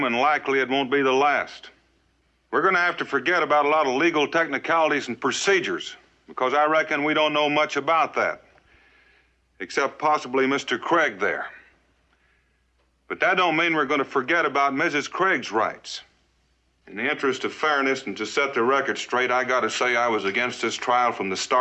and likely it won't be the last. We're going to have to forget about a lot of legal technicalities and procedures, because I reckon we don't know much about that, except possibly Mr. Craig there. But that don't mean we're going to forget about Mrs. Craig's rights. In the interest of fairness and to set the record straight, I got to say I was against this trial from the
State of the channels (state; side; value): identical; both; correlation 1.00